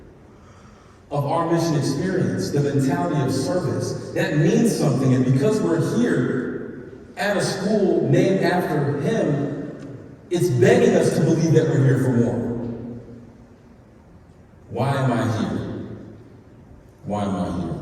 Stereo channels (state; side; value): identical; both; correlation 1.00